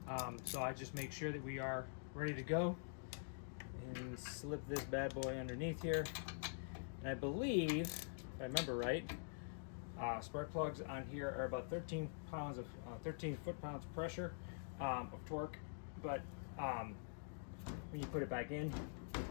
So I just make sure that we are ready to go and slip this bad boy underneath here. And I believe, if I remember right, spark plugs on here are about 13 foot-pounds of pressure of torque. But when you put it back in,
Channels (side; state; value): right; silent; digital silence